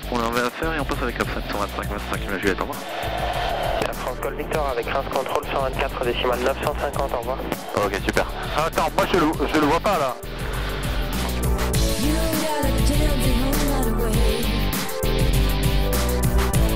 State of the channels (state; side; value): identical; both; correlation 1.00